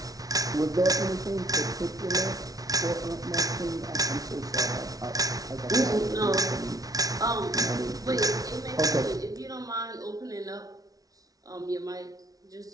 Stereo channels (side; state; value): left; late; 0.18 ms